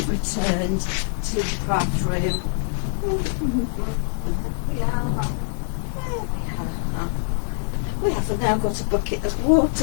returned to the craft room. We have now got a bucket of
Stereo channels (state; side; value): silent; right; 61 dB below the other